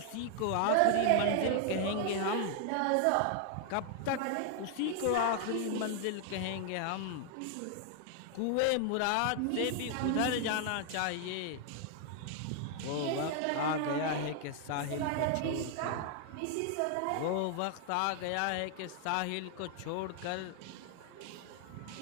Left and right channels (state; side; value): different; both; correlation 0.00